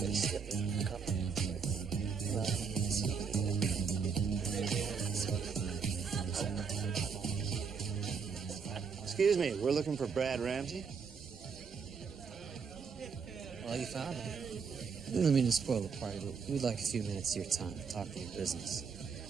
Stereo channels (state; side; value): quieter; left; 5.9 dB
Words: Excuse me, we're looking for Brad Ramsey. Well, you found him. I don't mean to spoil the party, but we'd like a few minutes of your time to talk to your business.